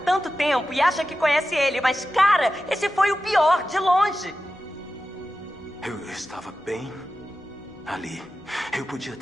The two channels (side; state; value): both; normal; correlation 0.92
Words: tanto tempo e acha que conhece ele, mas, cara, esse foi o pior, de longe. Eu estava bem ali. Eu podia